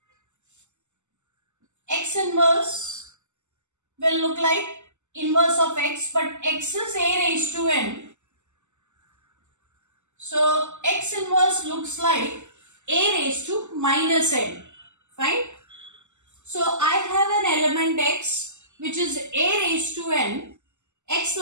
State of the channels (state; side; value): late; left; 0.84 ms